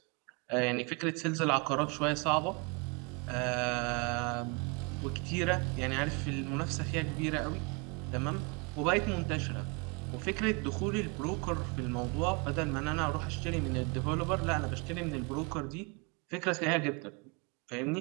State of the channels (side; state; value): left; quieter; 30.9 dB